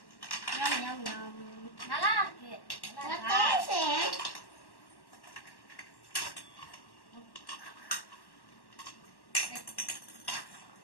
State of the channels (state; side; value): late; right; 1.1 ms